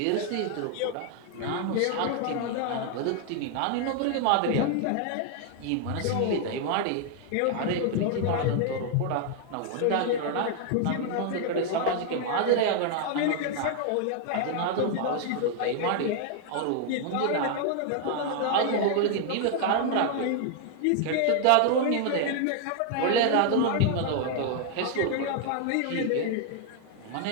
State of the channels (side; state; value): both; different; correlation 0.00